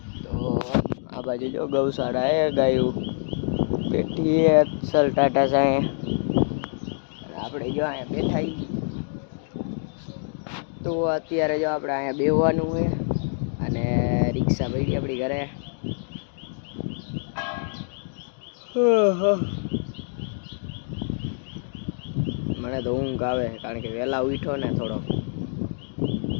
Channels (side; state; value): right; silent; digital silence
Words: તો આ બાજુ જો ગૌશાળા હે, ગાયું બેઠી હે સલ ટાટા સાંઈ, આપણે જો અહીંયા બેઠા હી। તો અત્યારે જો આપણે અહીંયા બેહવાનું છે અને રિક્ષા પડી આપણી ઘરે। મને તો ઊંઘ આવે કારણ કે વહેલા ઉઠ્યો ને થોડો।